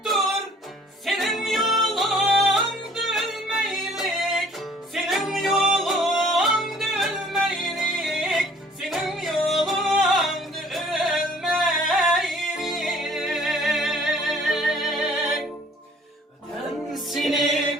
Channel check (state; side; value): normal; both; correlation 0.55